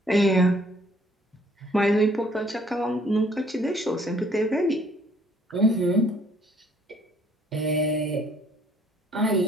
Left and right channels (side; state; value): both; normal; correlation 0.61